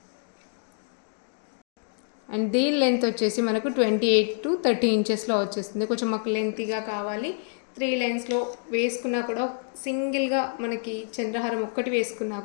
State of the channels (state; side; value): silent; right; 60 dB below the other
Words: అండ్ దీని లెంత్ వచ్చేసి మనకు 28 to 30 ఇంచెస్లో వచ్చేస్తుంది. కొంచెం మాకు లెంతీగా కావాలి. 3 లైన్స్లో వేసుకున్నా కూడా సింగిల్గా మనకి చంద్రహారం ఒక్కటి వేసుకున్నా